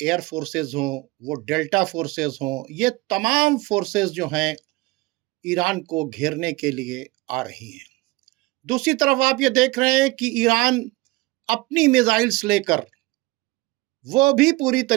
فورسز ہوں، وہ ڈیلٹا فورسز ہوں، یہ تمام فورسز جو ہیں ایران کو گھیرنے کے لیے آ رہی ہیں۔ دوسری طرف آپ یہ دیکھ رہے ہیں کہ ایران اپنی میزائلز لے کر وہ بھی پوری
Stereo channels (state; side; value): quieter; left; 22.4 dB